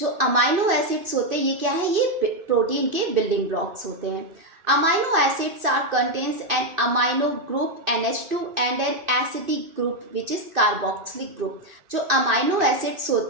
अमाइनो एसिड्स होते हैं ये क्या है, ये प्रोटीन के बिल्डिंग ब्लॉक्स होते हैं। Amino acids are contains an amino group NH2 and an acidic group which is carboxylic group. जो अमाइनो एसिड्स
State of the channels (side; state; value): left; late; 2.6 ms